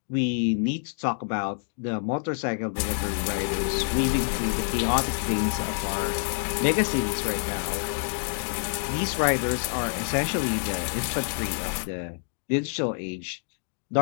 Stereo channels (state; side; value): silent; right; digital silence